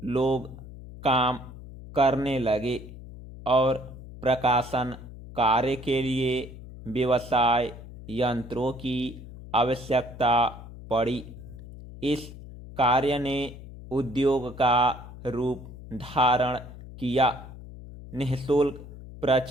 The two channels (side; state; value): left; noise; hum, 15 dB below the sound